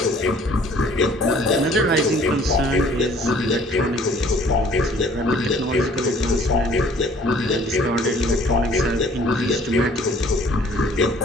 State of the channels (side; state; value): both; normal; correlation 0.55